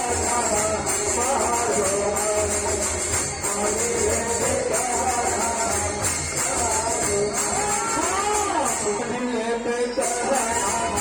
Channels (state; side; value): identical; both; correlation 1.00